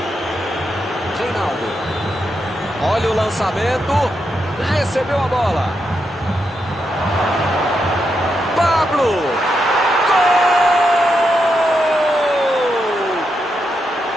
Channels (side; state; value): both; normal; correlation 0.83